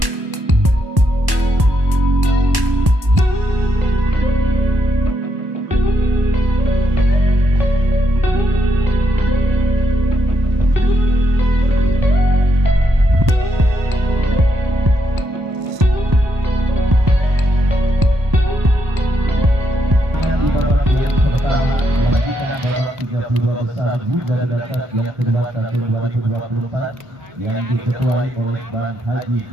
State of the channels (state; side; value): late; left; 1.1 ms